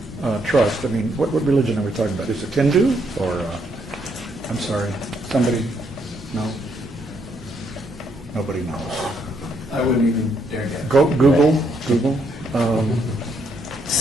Trust? I mean, what religion are we talking about? Is it Hindu or, I'm sorry, somebody, no? Nobody knows. I wouldn't even dare guess. Google.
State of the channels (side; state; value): both; normal; correlation 0.73